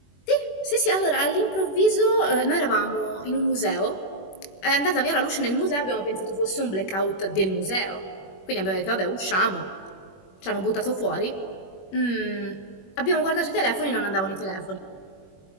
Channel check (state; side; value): late; right; 21 ms